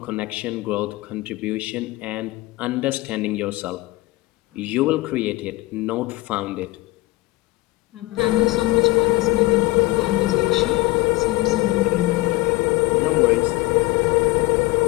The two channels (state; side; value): quieter; right; 20.0 dB